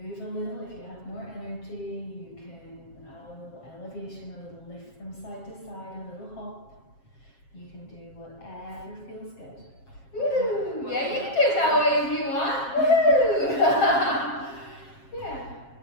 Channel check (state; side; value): late; right; 7.4 ms